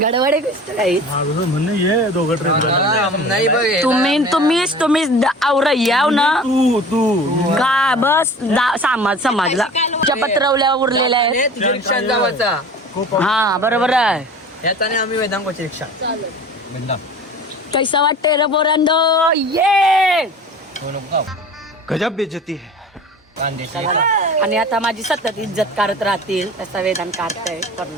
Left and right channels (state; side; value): normal; both; correlation 0.40